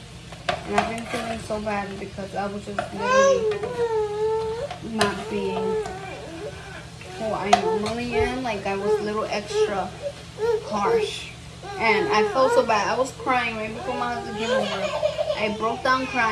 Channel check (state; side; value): identical; both; correlation 1.00